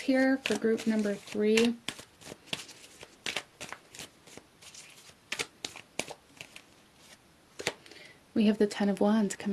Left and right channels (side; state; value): both; identical; correlation 1.00